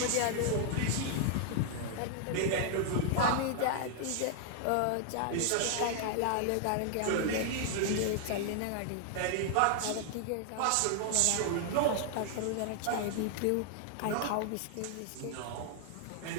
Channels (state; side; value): different; both; correlation 0.00